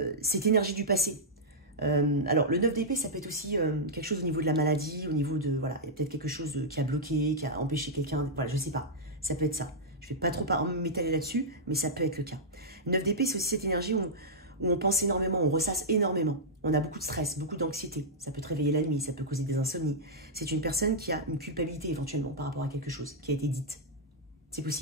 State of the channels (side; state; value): both; normal; correlation -0.08